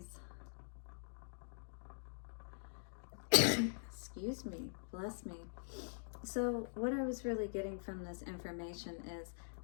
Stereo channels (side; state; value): right; silent; digital silence